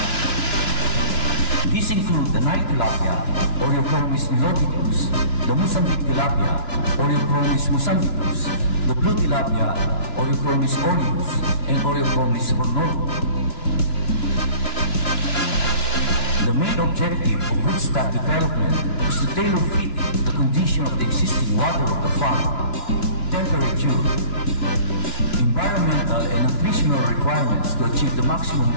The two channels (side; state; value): right; late; 2.9 ms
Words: These include the Nile tilapia, Oreochromis niloticus, the Mozambique tilapia, Oreochromis mozambicus, the blue tilapia, Oreochromis aureus, and Oreochromis hornorum. The main objective of broodstock development is to tailor fit it to the condition of the existing water of the farm, temperature, environmental and nutritional requirements to achieve the maximum